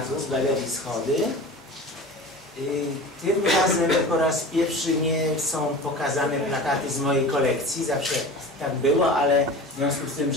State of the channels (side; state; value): both; normal; correlation 0.35